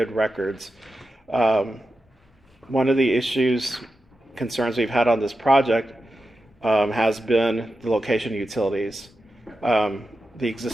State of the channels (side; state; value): both; normal; correlation 0.90